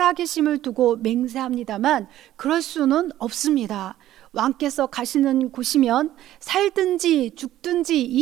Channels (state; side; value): quieter; left; 13.4 dB